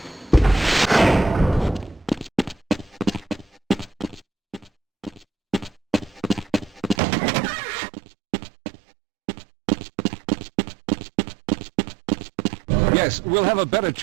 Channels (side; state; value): left; drops out; at 7.0 s